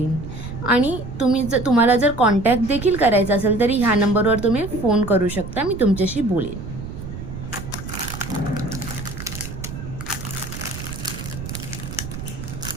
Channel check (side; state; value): right; noise; rumble, 9 dB below the sound